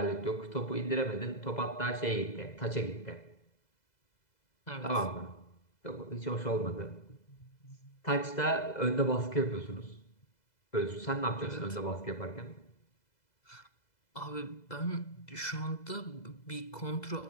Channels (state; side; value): late; right; 2.0 ms